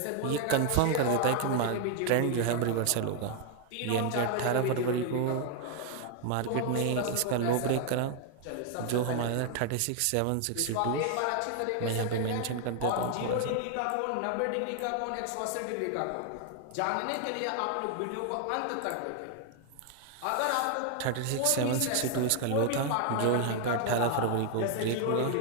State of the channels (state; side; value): different; both; correlation 0.00